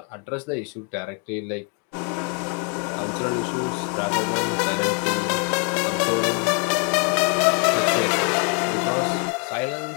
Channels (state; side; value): quieter; right; 38.8 dB